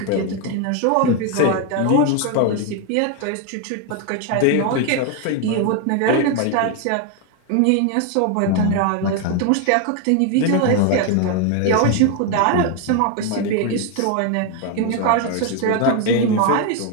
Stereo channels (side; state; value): both; different; correlation 0.01